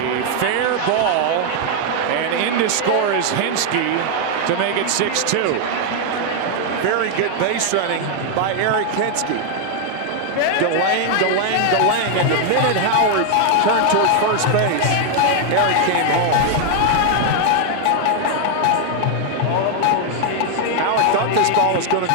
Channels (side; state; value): both; different; correlation 0.00